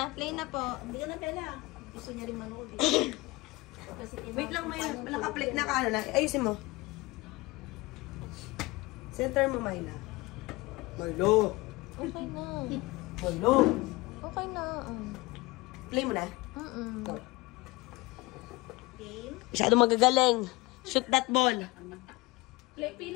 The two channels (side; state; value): right; quieter; 22.5 dB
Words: Play na po. Hindi ka na Bella. Gusto niya rin manood eh. Kasi Wait lang, may nakaplik na ka ano na. Ayusin mo. Center mo, Myla. Marlo! Okay na. Marlo! Okay na. Play mo na. Mm-mm. game. Masyado magagaling. Shoot that ball. Play,